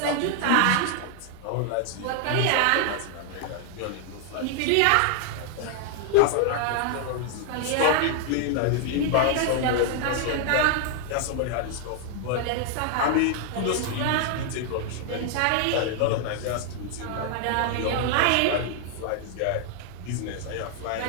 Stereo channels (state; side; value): different; both; correlation 0.00